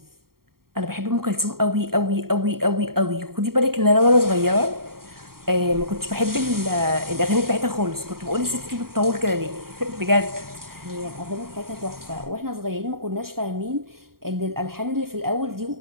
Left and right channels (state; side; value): late; left; 0.93 ms